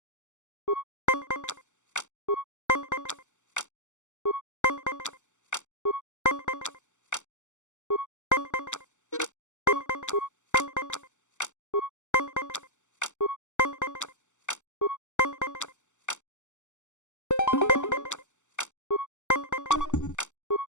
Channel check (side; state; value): right; late; 0.84 ms